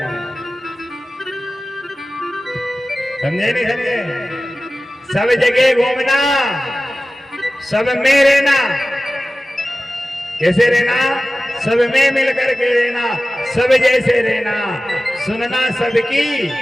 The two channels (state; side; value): normal; both; correlation 0.96